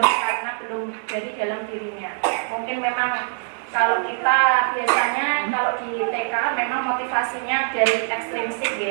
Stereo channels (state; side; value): silent; left; digital silence